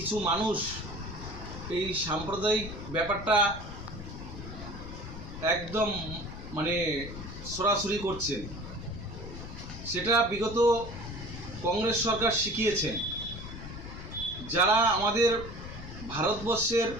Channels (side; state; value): left; noise; rumble, 10 dB below the sound